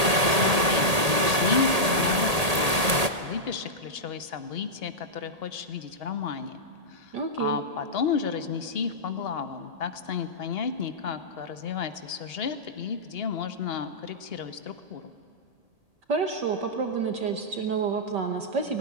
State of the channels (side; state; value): left; late; 1.8 ms